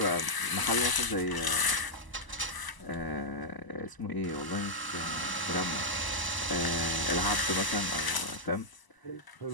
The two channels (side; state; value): right; late; 1.0 ms